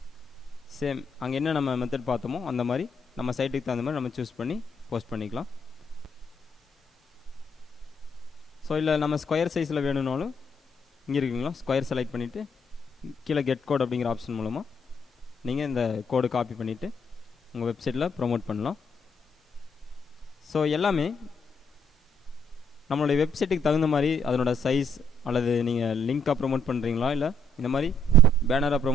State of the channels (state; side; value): normal; both; correlation 0.71